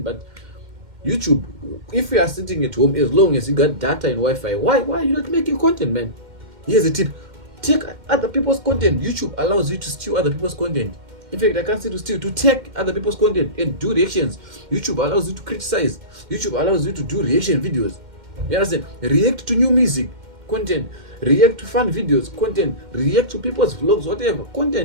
But YouTube, if you are sitting at home, as long as you got data and Wi-Fi, why are you not making content, man? Here's a tip: take other people's content. YouTube allows you to steal other people's content. In fact, I can't say to steal, to take other people's content and do reactions. YouTube allows you to criticize. YouTube allows you to do reaction videos. You understand? React to new music content, react to fun videos content, react to people's vlogs, whatever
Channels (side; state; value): left; late; 2.1 ms